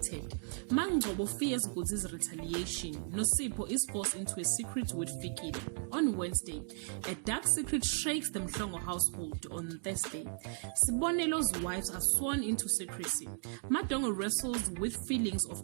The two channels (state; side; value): silent; left; 54 dB below the other